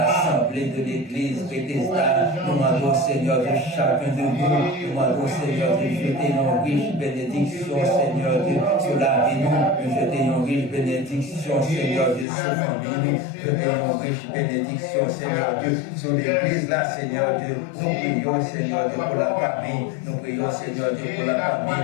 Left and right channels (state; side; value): drops out; right; at 12.2 s